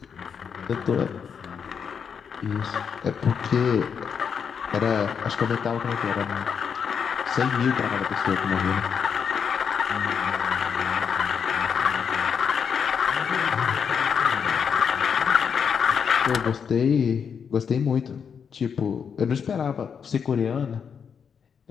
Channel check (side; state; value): right; quieter; 6.9 dB